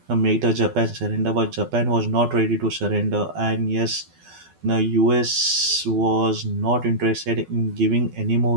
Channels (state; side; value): late; left; 12 ms